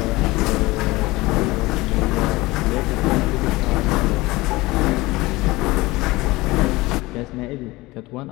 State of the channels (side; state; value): right; quieter; 20.8 dB